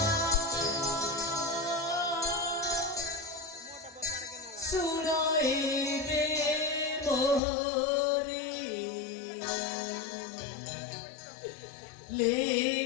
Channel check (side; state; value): right; drops out; at 7.4 s